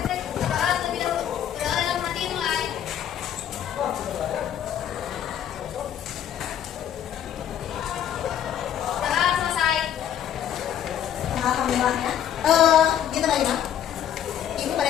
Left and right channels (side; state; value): right; quieter; 10.0 dB